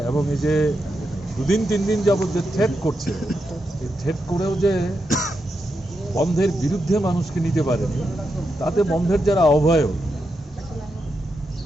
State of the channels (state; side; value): normal; both; correlation 0.85